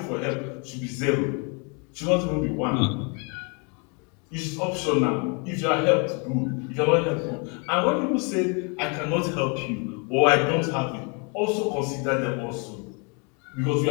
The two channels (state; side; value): quieter; right; 34.6 dB